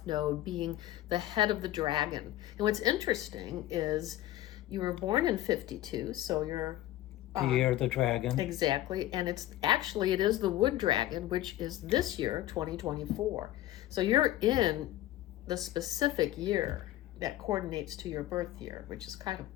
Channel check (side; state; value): right; quieter; 14.6 dB